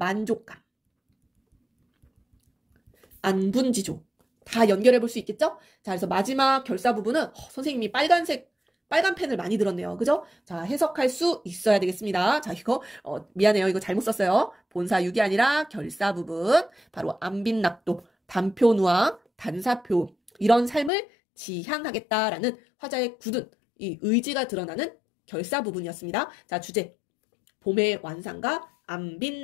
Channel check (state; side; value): drops out; right; at 20.9 s